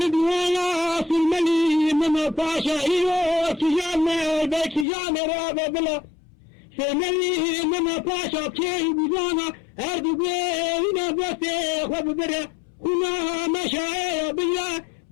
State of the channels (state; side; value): drops out; right; at 4.9 s